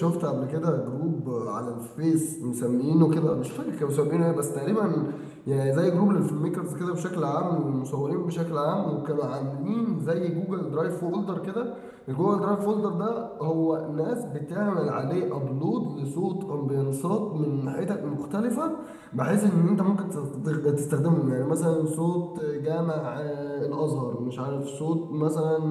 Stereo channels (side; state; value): both; identical; correlation 1.00